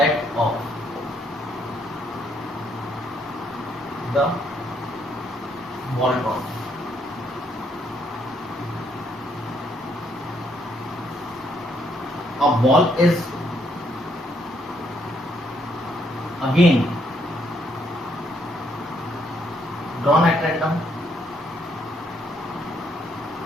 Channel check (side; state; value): both; normal; correlation 0.71